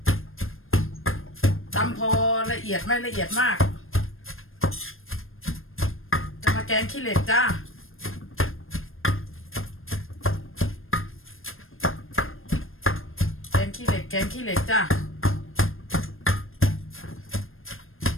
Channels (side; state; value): right; late; 0.60 ms